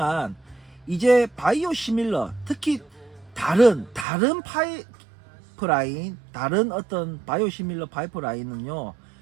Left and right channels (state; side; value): drops out; left; at 4.0 s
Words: 이제 바이오 시밀러 특히 다른 파이프라인 다른 어떤 바이오 시밀러 파이프라인은요